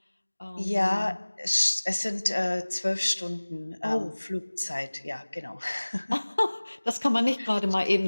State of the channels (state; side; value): inverted; both; correlation -1.00